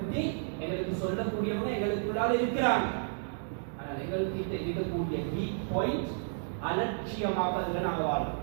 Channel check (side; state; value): left; silent; digital silence